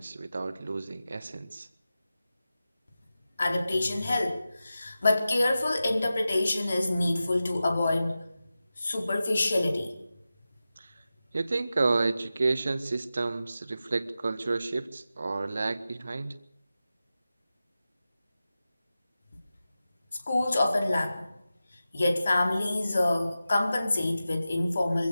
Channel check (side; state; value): both; inverted; correlation -0.93